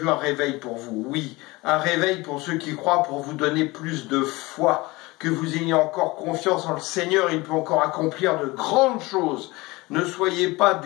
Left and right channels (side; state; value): right; quieter; 22.2 dB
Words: un réveil pour vous. Oui, un réveil pour ceux qui croient, pour vous donner plus de foi, que vous ayez encore confiance en le Seigneur. Il peut encore accomplir de grandes choses. Ne soyez pas